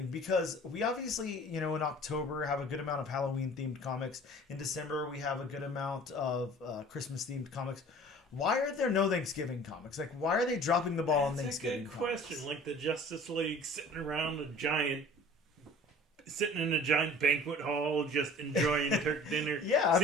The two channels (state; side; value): normal; both; correlation 0.46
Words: because we obviously, in October have a good amount of Halloween themed comics. In December we have a good amount of Christmas themed comics. Why are there no Thanksgiving comics? Like, why are they dropping the ball on Thanksgiving? That's a good question. Like the Justice League sitting in a giant banquet hall, just enjoying turkey dinner. Yeah,